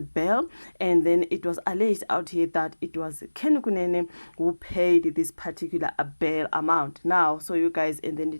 And then it was alleged out here that it was Kenny Kunene who paid this particular bail amount. Now, so you guys, and then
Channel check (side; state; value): both; inverted; correlation -1.00